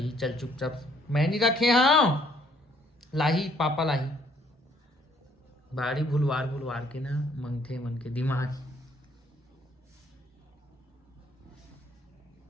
चल चुपचाप। मैं नहीं रखे हाँ लाही पापा लाही बाड़ी भुलवार के ना मंगथे मन के दिमाग।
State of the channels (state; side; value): normal; both; correlation 0.64